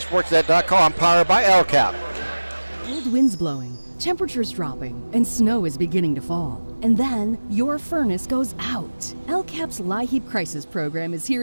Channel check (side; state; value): both; inverted; correlation -1.00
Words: powered by LCAP. Cold winds blowing, temperatures dropping, and snow is beginning to fall. And then your furnace goes out. LCAP's LIHEAP Crisis Program is